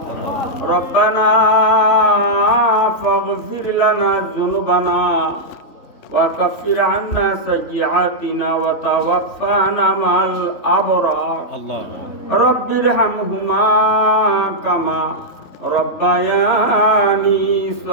ربنا فاغفر لنا ذنوبنا وكفر عنا سيئاتنا وتوفنا مع الأبرار رب ارحمهما كما ربياني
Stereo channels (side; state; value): right; late; 3.5 ms